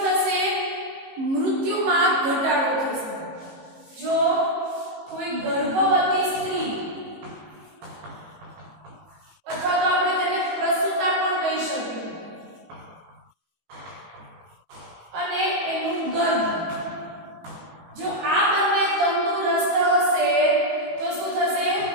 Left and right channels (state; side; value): late; left; 18 ms